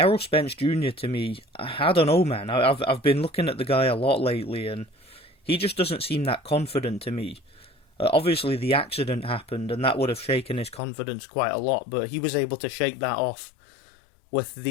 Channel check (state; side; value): drops out; right; at 10.8 s